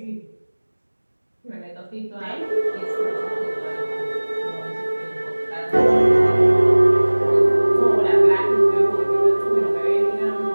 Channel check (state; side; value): inverted; both; correlation -1.00